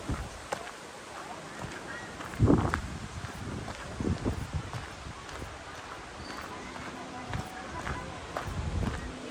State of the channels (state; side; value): identical; both; correlation 1.00